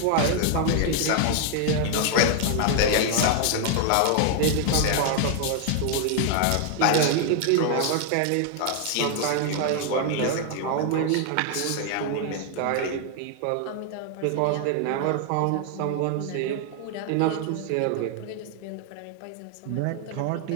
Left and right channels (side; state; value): both; different; correlation 0.00